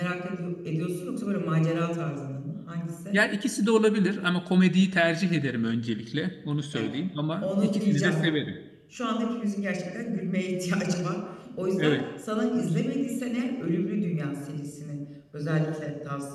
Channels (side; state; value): both; identical; correlation 1.00